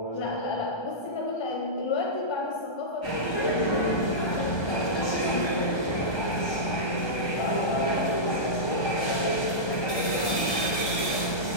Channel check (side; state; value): right; late; 1.3 ms